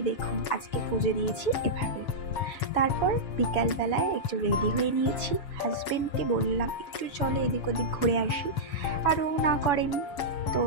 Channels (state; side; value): late; right; 7.2 ms